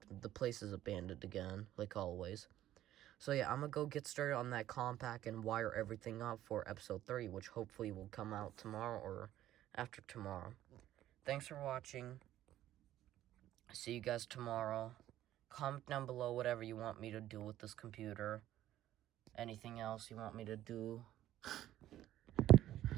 the place is abandoned again, like always. So yeah, I'm gonna go get started on that compact and wire everything up for episode 3, which hopefully will come out tomorrow or after tomorrow. Thanks for watching. See you guys tomorrow. Comment down below whatever you want me to do with this computer. Anything else you want me to do.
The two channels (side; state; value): left; quieter; 13.1 dB